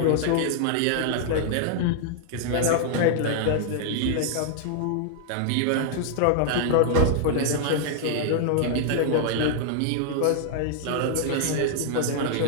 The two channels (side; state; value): both; different; correlation 0.00